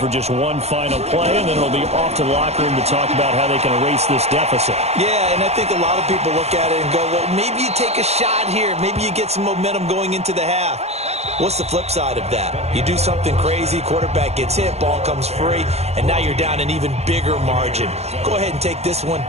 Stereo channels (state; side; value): late; left; 0.31 ms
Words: just one final play, and then it'll be off to the locker room to talk about how they can erase this deficit. Yeah, and I think a lot of people look at it and go, well, maybe you take a shot here. Maybe you get some momentum going into the half. What's the flip side of that? You do something crazy, quarterback gets hit, ball comes free, and now you're down an even bigger margin. Go ahead and take this one,